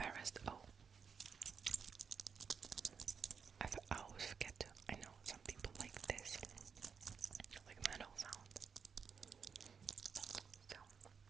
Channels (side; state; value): left; quieter; 6.3 dB